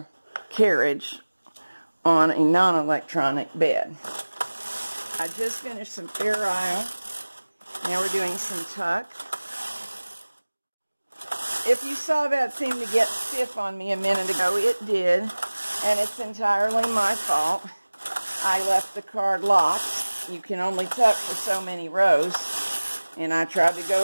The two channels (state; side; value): inverted; both; correlation -1.00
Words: carriage on a non-electronic bed. I just finished some fair isle. Now we're doing some tuck. If you saw that seem to get stiff on me a minute ago, it did, and it's entirely my fault. I left the card locked. You can only tuck for so many rows, and I tried to go